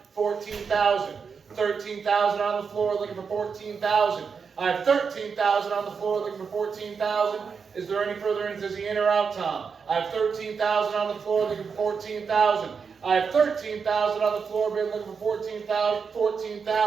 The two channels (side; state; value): left; quieter; 5.8 dB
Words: 14,000. 13,000 on the floor, looking for 14,000. I have 13,000 on the floor, looking for 14,000. Is there any further interest? Is he in or out, Tom? I have 13,000 on the floor, looking for 14,000. I have 13,000 on the floor, bid looking for 14,000,